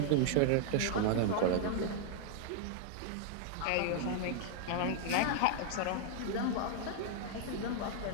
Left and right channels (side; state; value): both; different; correlation 0.00